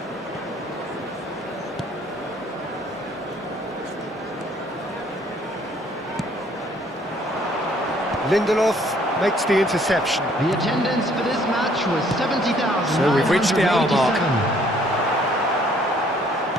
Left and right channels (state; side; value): normal; both; correlation 0.62